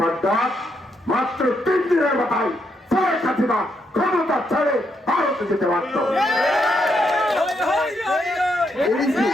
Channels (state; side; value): normal; both; correlation 0.78